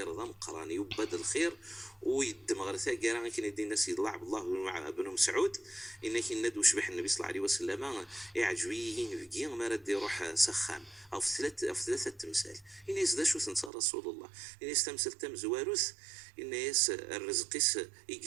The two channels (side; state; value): left; drops out; at 13.7 s